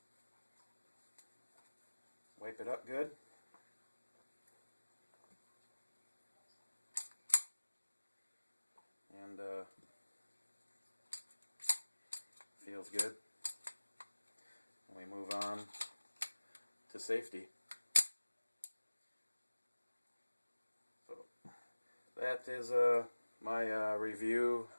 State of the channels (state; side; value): inverted; both; correlation -1.00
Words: wipe it up good. And feels good. And we move on to safety. So that is my review